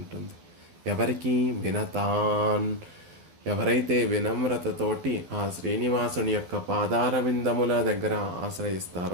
ఎవరికి? వినతాన్. ఎవరైతే వినమ్రతతోటి ఆ శ్రీనివాసుని యొక్క పాదార విందముల దగ్గర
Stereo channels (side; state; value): left; late; 12 ms